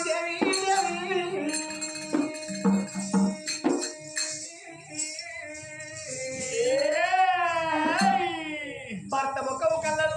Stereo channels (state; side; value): identical; both; correlation 1.00